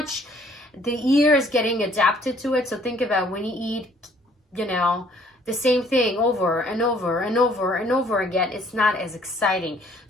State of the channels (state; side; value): normal; both; correlation 0.60